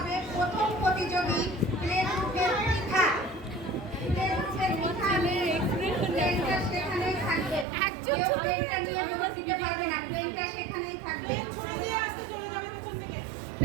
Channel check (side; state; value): left; drops out; at 7.7 s